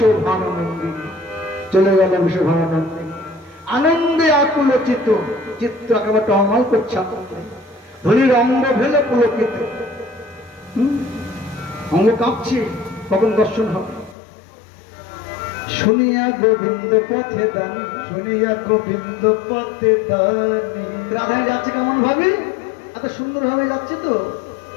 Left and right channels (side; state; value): right; drops out; at 14.2 s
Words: চলে গেল বিশ্বভানন্দী। আনন্দে আকুল চিত্ত, চিত্ত একেবারে টলমল করছে। ধনির অঙ্গ ভেলে পুলকিত, অঙ্গ কাঁপছে, কখন দর্শন হবে। শুনিয়া গোবিন্দ পথে দানি, শুনিয়া গোবিন্দ পথে দানি। রাধাই যাচ্ছে কেমন ভাবে, এত সুন্দর ভাবে যাচ্ছে তো